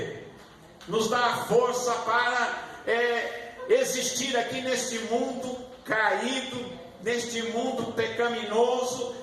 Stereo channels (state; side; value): identical; both; correlation 1.00